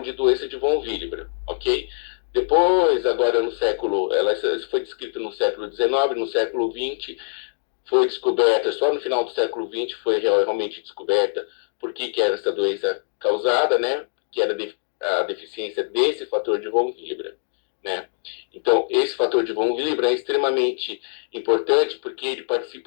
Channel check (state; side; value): silent; right; digital silence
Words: de doença de von Willebrand, ok? Depois, agora no século, ela foi descrita no século XIX, no século XX, foi descoberta, só no final do século XX foi realmente descoberta por que era essa doença causada, né? Que era a deficiência desse fator de von Willebrand, né? Então, esse fator de von Willebrand é extremamente importante porque ele